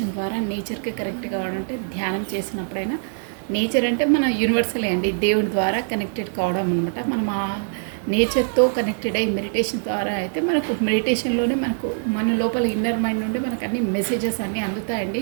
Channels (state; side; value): silent; left; digital silence